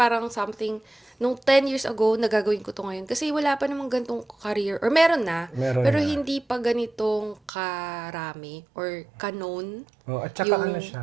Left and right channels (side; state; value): left; drops out; at 7.5 s